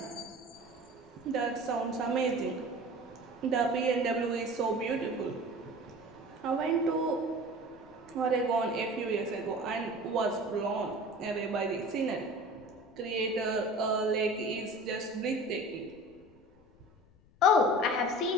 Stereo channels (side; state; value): left; noise; rumble, 28 dB below the sound